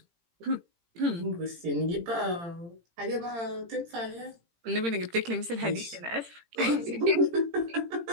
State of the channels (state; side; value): late; left; 18 ms